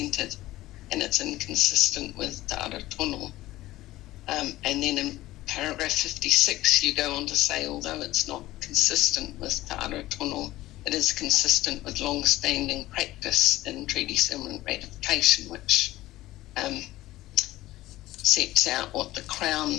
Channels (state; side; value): quieter; right; 16.5 dB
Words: and it's inconsistent with Te Ara Tono. And then in paragraph 56, you go on to say, although it's not consistent with Te Ara Tono, it is consistent with long-standing practice in treaty settlement ratification, which sets out what the